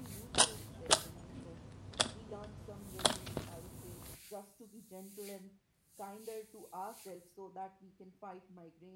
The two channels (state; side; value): identical; both; correlation 1.00